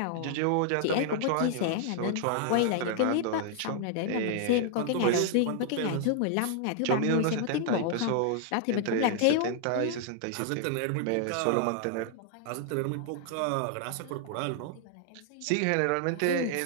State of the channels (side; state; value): both; different; correlation 0.00